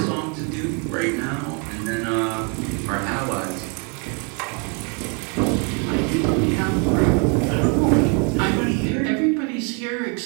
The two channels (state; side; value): quieter; left; 35.8 dB